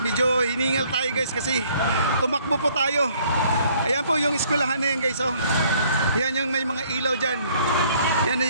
medyo hiningal tayo guys kasi tumakbo po tayo. Ayan po yung eskwelahan na yan guys, oh. Yan yung may mga ilaw dyan.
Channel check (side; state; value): both; inverted; correlation -0.61